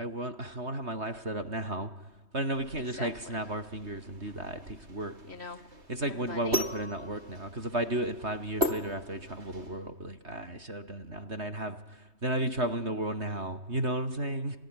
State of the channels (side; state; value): left; late; 3.2 ms